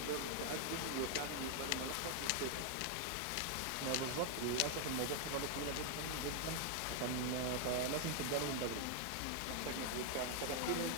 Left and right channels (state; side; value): different; both; correlation 0.00